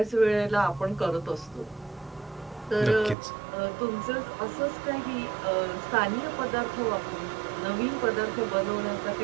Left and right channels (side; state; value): left; drops out; at 3.2 s